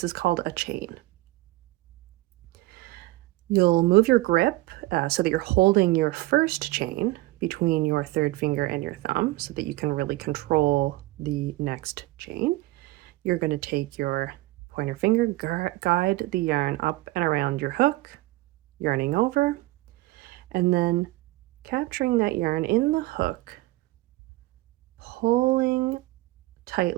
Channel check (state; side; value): quieter; left; 19.2 dB